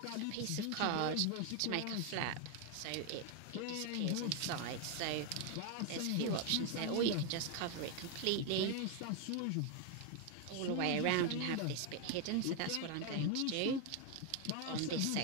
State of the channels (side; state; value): both; different; correlation 0.01